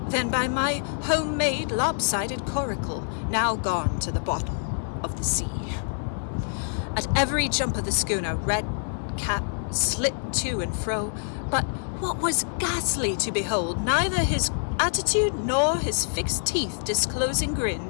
than by my homemade lopsided coracle, now gone to the bottom of the sea. At every jump of the schooner, Redcap slipped to and fro, but what was ghastly to behold, neither his attitude nor his fixed teeth disclosing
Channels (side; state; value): right; silent; 61 dB below the other